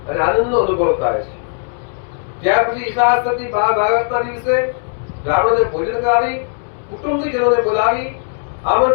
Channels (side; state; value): right; silent; 68 dB below the other